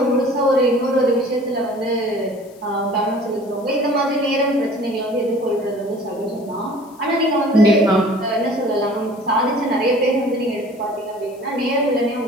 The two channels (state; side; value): noise; left; hiss, 28 dB below the sound